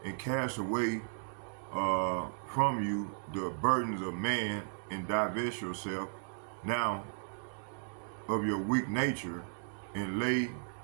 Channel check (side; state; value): left; silent; digital silence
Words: and cast away from you the burdens of man, and divest yourself now of your weak nature, and lay